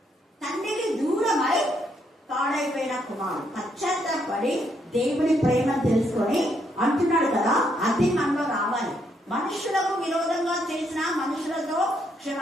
తండ్రికి దూరమై పాడైపోయిన కుమారుడు పశ్చాత్తాపడి దేవుని ప్రేమ తెలుసుకొని అంటున్నాడు కదా, అది మనలో రావాలి. మనుషులకు విరోధంగా చేసిన మనుషులతో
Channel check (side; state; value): both; normal; correlation 0.74